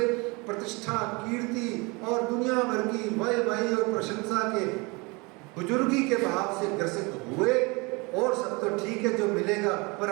प्रतिष्ठा, कीर्ति और दुनिया भर की वाह-वाही और प्रशंसा के बुजुर्गी के भाव से ग्रसित हुए, और सब तो ठीक है जो मिलेगा, पर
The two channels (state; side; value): quieter; left; 27.3 dB